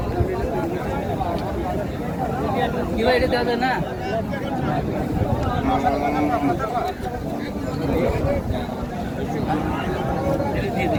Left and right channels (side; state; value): both; identical; correlation 1.00